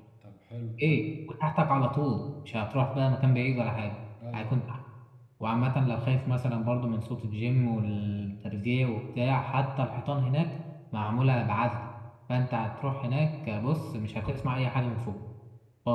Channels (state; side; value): identical; both; correlation 1.00